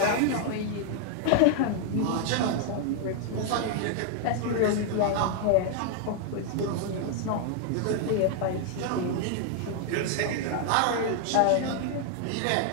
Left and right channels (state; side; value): different; both; correlation 0.00